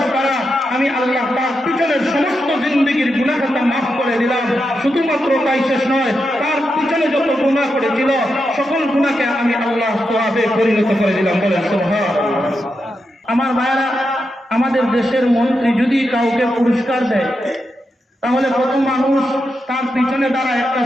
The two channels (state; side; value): normal; both; correlation 0.86